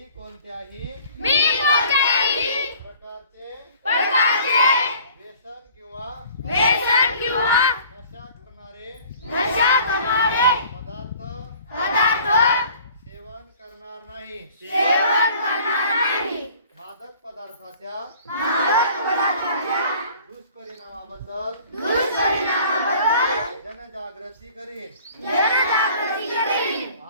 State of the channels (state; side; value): inverted; both; correlation -0.50